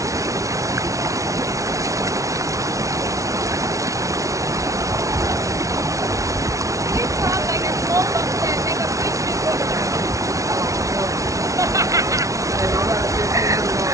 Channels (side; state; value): left; late; 0.16 ms